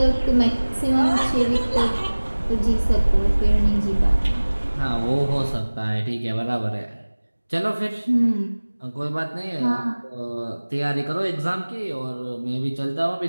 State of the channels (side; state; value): both; inverted; correlation -1.00